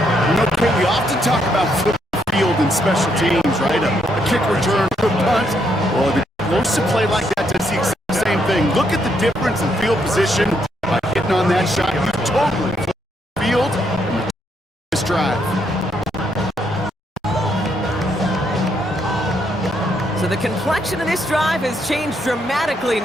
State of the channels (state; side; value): normal; both; correlation 0.75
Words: You know, Kate, we often talk about football field and special teams, right? A kick return, a punt. Well, the explosive play like that does the exact same thing. Look at the difference in field position by hitting on that shot. You totally flip the field and this drive. So the complexion of this drive has changed dramatically